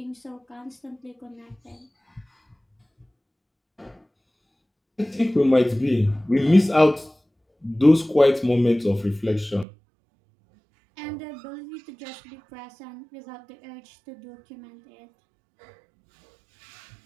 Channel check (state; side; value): drops out; left; at 9.7 s